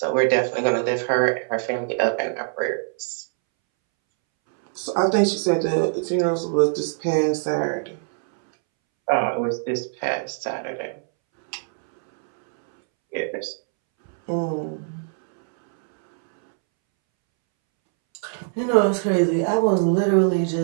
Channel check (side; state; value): left; silent; 64 dB below the other